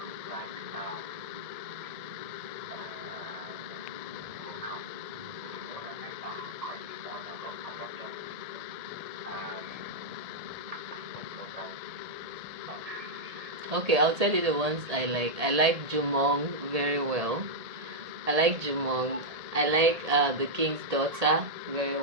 Okay, I'll tell you the ones I like. I like Jumong very well. I like Jumong. I like The King's Daughter very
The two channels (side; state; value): left; late; 1.8 ms